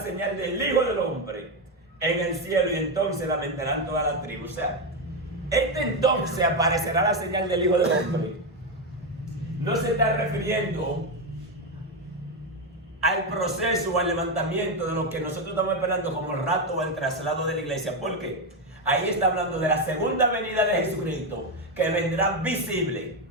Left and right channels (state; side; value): normal; both; correlation 0.09